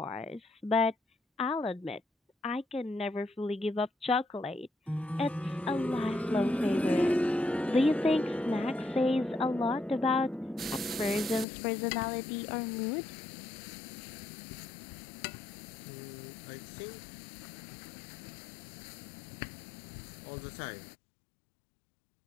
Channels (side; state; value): right; drops out; at 11.5 s